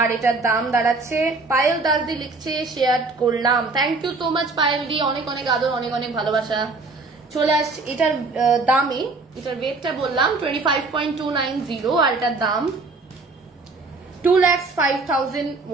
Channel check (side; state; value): left; quieter; 3.7 dB